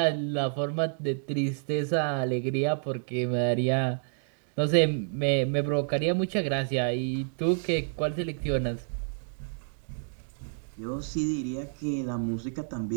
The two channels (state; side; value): silent; left; digital silence